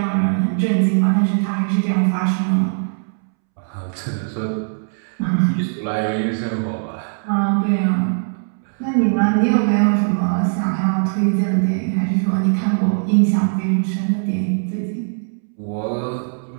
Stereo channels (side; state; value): left; silent; 66 dB below the other